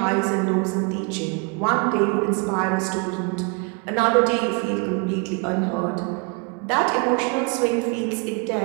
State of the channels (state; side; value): quieter; left; 32.5 dB